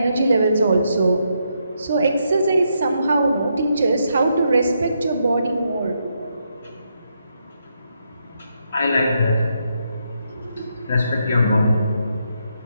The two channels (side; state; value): both; inverted; correlation -0.79